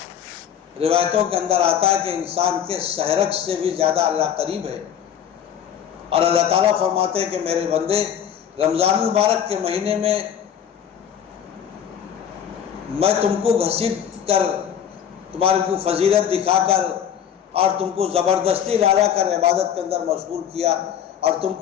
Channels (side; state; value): right; quieter; 9.0 dB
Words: روایتوں کے اندر آتا ہے کہ انسان کے شہرک سے بھی زیادہ اللہ قریب ہے۔ اور اللہ تعالیٰ فرماتے ہیں کہ میرے بندے رمضان المبارک کے مہینے میں میں تم کو گھسیٹ کر، تمہارے کو فضیلت دکھا کر اور تم کو زبردستی لالا کر عبادت کے اندر مشغول کیا، اور تم